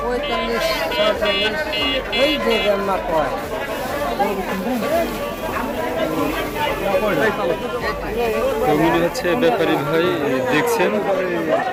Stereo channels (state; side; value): identical; both; correlation 1.00